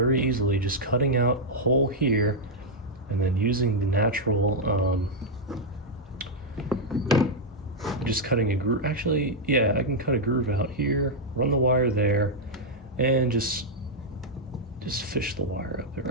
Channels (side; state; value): both; normal; correlation -0.03